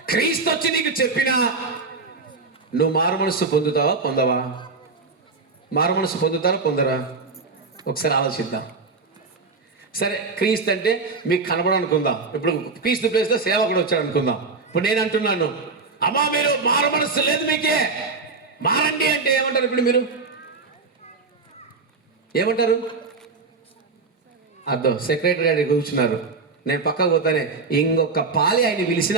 క్రీస్తు వచ్చి నీకు చెప్పినా నువ్వు మారు మనసు పొందవా? మారు మనసు పొందరా? ఒకసారి ఆలోచిద్దాం. సరే, క్రీస్తు అంటే మీకు కనబడనుకుందాం. ఇప్పుడు క్రీస్తు ప్లేస్లో సేవకుడు వచ్చాడు అనుకుందాం. ఇప్పుడు నేను అంటున్నాను, అమ్మా మీరు మారు మనసు లేదు మీకే, మారండి అంటే ఏమంటారు? ఇప్పుడు మీరు ఏమంటారు? అర్థం సెక్రటరీ గారు కూర్చున్నారు, నేను పక్కకు పోతానే ఇంకొక పాలి ఆయన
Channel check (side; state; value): left; quieter; 4.2 dB